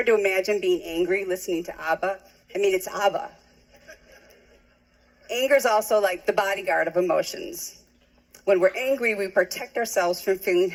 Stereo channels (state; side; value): identical; both; correlation 1.00